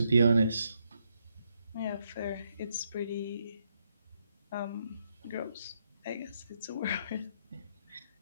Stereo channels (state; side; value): inverted; both; correlation -0.77